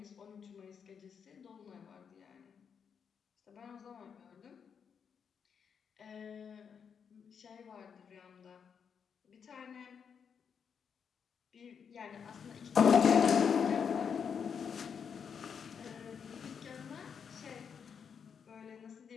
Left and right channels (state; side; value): quieter; right; 6.9 dB